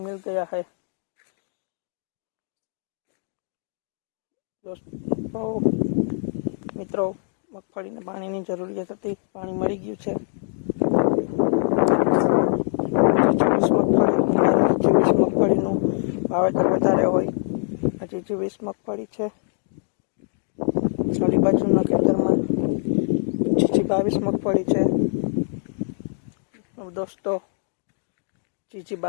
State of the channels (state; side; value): silent; right; 63 dB below the other